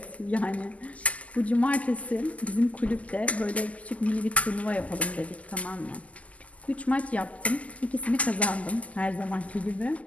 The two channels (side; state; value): right; late; 0.070 ms